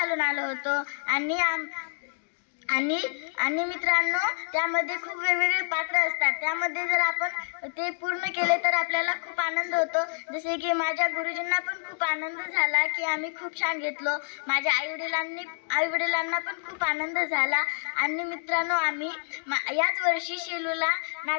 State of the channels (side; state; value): right; silent; 57 dB below the other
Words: आलो होतो आणि मित्रांनो त्यामध्ये खूप वेगवेगळे पात्र असतात। त्यामध्ये जर आपण ते पूर्ण केले तर आपल्याला खूप आनंद होतो। जसे की माझ्या गुरुजींना पण खूप आनंद झाला की आम्ही खूप छान घेतलो। माझ्या आई-वडिलांना पण खूप आनंद झाला। आणि मित्रांनो आम्ही याच वर्षी शेलूला